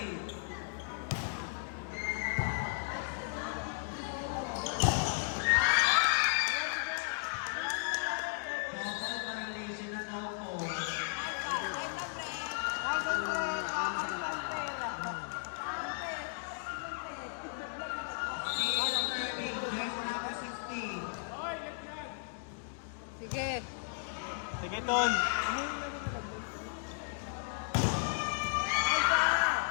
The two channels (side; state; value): right; silent; digital silence